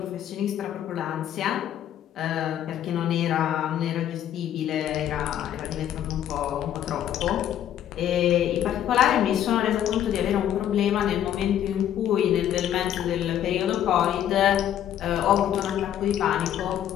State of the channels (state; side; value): quieter; right; 10.8 dB